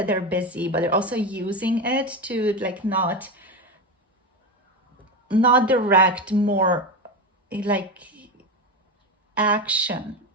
they're busy, but they're also using it to like not direct more like action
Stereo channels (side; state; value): both; normal; correlation 0.17